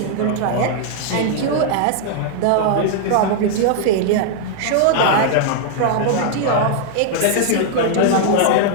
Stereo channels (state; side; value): different; both; correlation 0.00